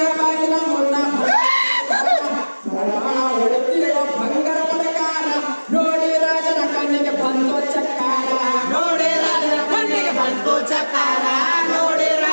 ಬಾಗಿಲ ಮುಂದ ಬಂಗಾರ ಪ್ರಕಾರ ನೋಡಿ ರಾಜನ ಕಣ್ಣಿಗೆ ಬಂದು ಚಕ್ಕಾರ ನೋಡಿ ರಾಜನ ಕಣ್ಣಿಗೆ ಬಂತು ಚಕಾರ ನೋಡಿ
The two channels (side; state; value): both; inverted; correlation -1.00